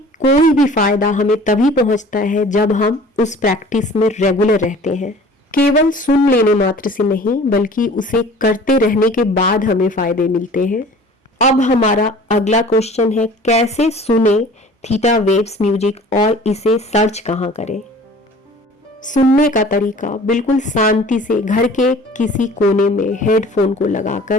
कोई भी फायदा हमें तभी पहुंचता है जब हम उस प्रैक्टिस में रेगुलर रहते हैं। केवल सुन लेने मात्र से नहीं बल्कि उसे करते रहने के बाद हमें फायदे मिलते हैं। अब हमारा अगला क्वेश्चन है, कैसे सुने थीटा वेव्स म्यूजिक और इसे सर्च कहाँ करें। सुनने का तरीका, बिल्कुल शांति से घर के किसी कोने में हेडफोन को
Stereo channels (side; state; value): both; normal; correlation 0.46